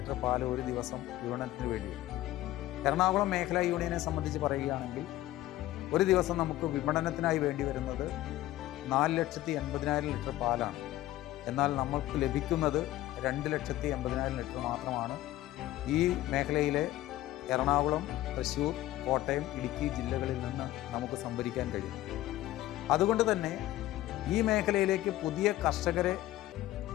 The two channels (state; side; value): quieter; right; 15.4 dB